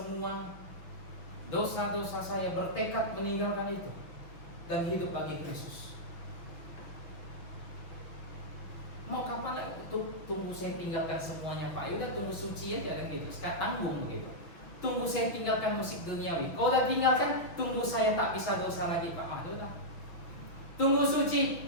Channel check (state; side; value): late; right; 6.1 ms